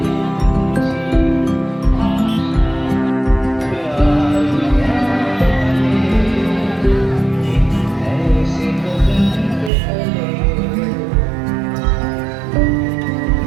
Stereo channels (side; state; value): left; drops out; at 9.7 s